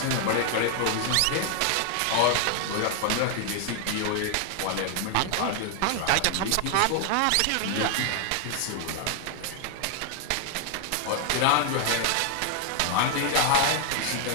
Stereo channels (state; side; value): different; both; correlation 0.00